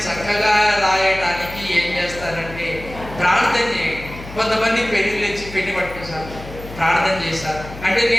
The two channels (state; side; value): noise; left; hum, 14 dB below the sound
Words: చక్కగా రాయడానికి ఏం చేస్తానంటే ప్రార్థన చేయండి. కొంతమంది పెన్నులు తెచ్చి పెన్ను పట్టుకొస్తారు, ప్రార్థన చేశారు అంటే